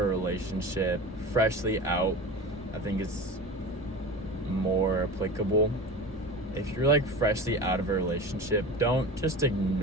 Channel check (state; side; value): normal; both; correlation 0.31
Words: relationship, freshly out, I think it's more applicable. If you're like freshly out of a relationship, don't just